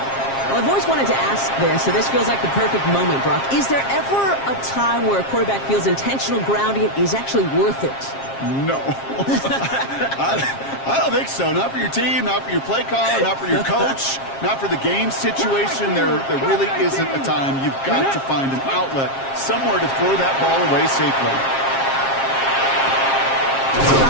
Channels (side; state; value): right; late; 7.4 ms